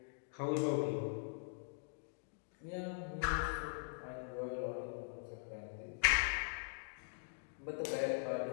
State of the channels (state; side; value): silent; right; digital silence